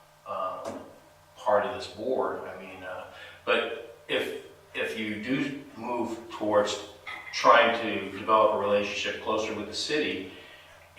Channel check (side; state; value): both; identical; correlation 1.00